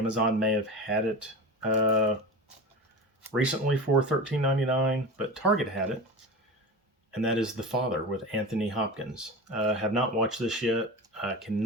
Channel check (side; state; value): both; normal; correlation 0.28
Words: may have had it recently for $13.99, but Target had it, and that is The Father with Anthony Hopkins. Have not watched this yet. I